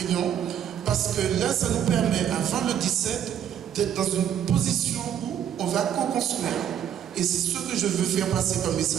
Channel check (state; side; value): quieter; left; 9.5 dB